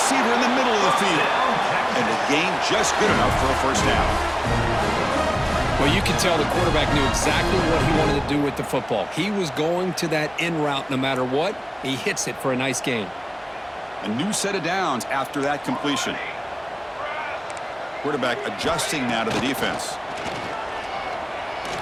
in the middle of the field. And the gain just good enough for a 1st down. Well, you can tell the quarterback knew exactly what he wanted to do with the football. He was going to that in route no matter what. He hits it for a nice gain. A new set of downs after that completion. Quarterback adjusting now to the defense.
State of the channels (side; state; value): both; identical; correlation 1.00